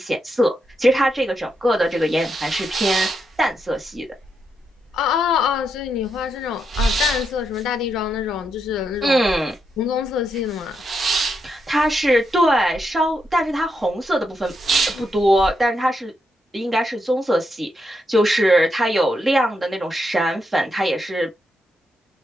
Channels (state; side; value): normal; both; correlation 0.82